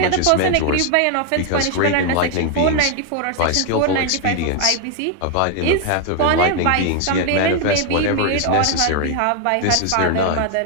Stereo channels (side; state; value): both; different; correlation 0.00